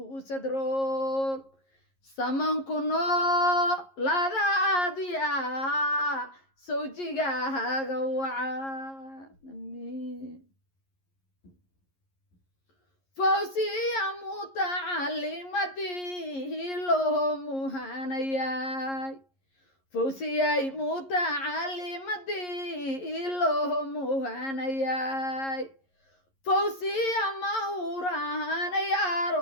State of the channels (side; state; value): right; late; 11 ms